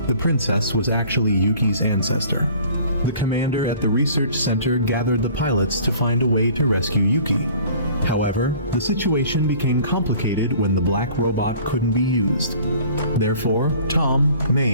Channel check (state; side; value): inverted; both; correlation -0.49